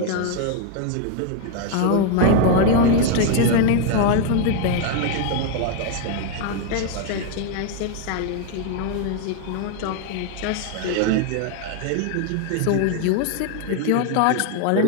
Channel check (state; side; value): different; both; correlation 0.00